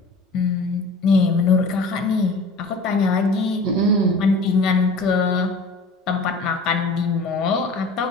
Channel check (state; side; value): quieter; right; 3.2 dB